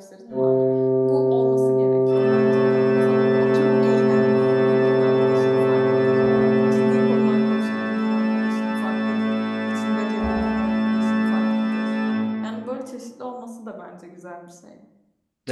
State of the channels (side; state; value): both; identical; correlation 1.00